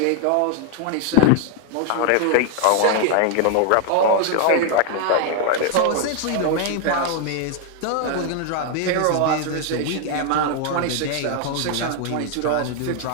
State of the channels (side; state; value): both; different; correlation 0.00